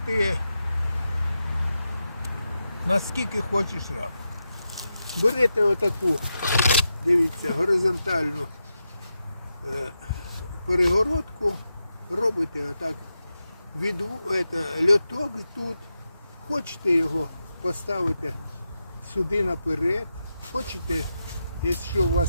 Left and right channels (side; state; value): both; inverted; correlation -0.88